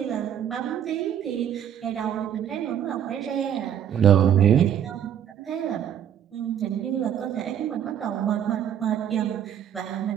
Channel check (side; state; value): left; quieter; 9.5 dB